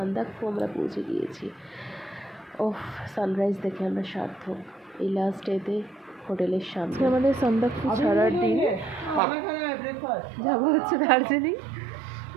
আমরা পৌঁছে গিয়েছি। ওফ, সানরাইজ দেখে আমরা সার্থক। এই লাস্ট ডেতে হোটেলের সামনে আমাদের সান্দাকফু ছাড়ার দিন, যাবো হচ্ছে দার্জিলিং।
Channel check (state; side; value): drops out; left; at 9.2 s